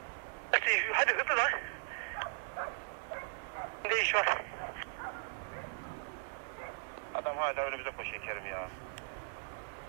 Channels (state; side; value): silent; left; digital silence